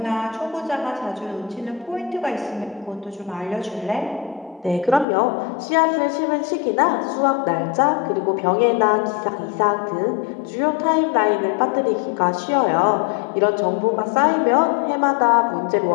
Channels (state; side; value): drops out; right; at 5.1 s